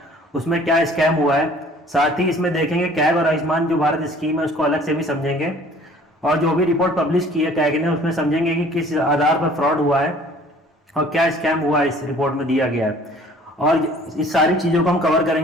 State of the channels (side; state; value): both; normal; correlation 0.52